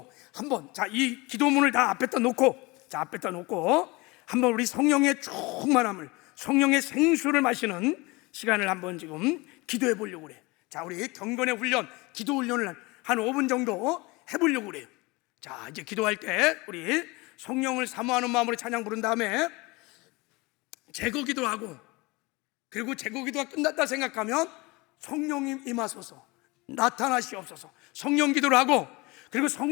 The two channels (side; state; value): right; quieter; 24.3 dB